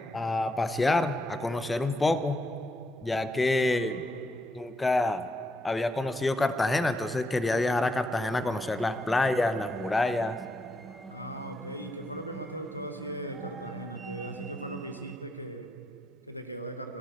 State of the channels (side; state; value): both; normal; correlation 0.80